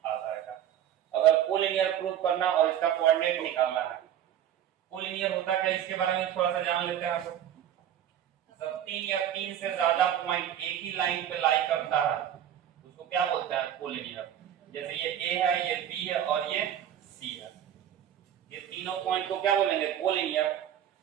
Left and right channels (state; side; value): quieter; left; 10.4 dB